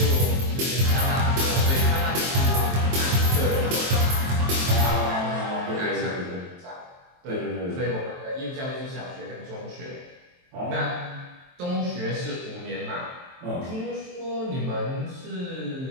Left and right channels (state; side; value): late; left; 23 ms